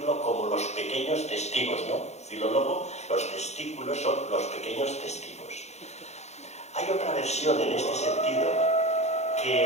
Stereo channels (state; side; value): late; right; 0.32 ms